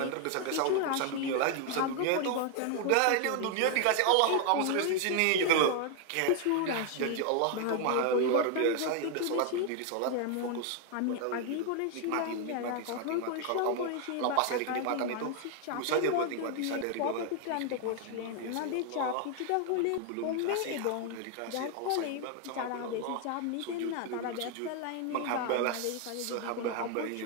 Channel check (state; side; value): different; both; correlation 0.00